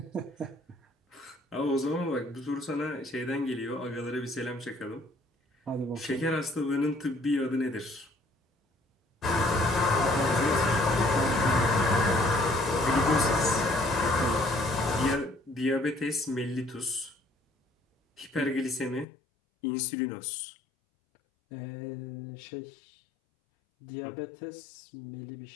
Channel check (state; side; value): drops out; right; at 19.1 s